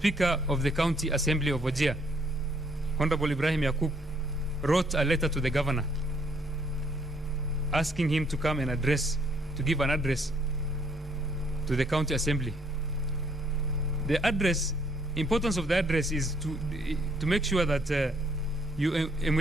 of the County Assembly of Wajir, Honorable Ibrahim Yaqub, wrote a letter to the governor asking him to come and give an address to the county assembly. The address, importance of the address is to make sure that you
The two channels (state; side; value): normal; both; correlation 0.66